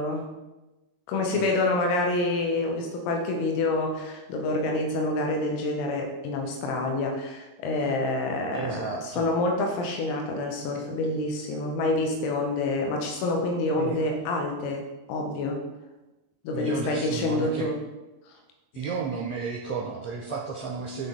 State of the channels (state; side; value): late; right; 23 ms